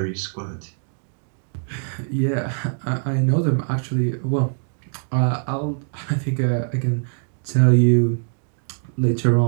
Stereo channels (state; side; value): silent; left; digital silence